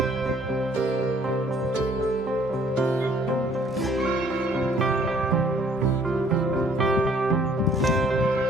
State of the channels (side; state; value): both; normal; correlation 0.60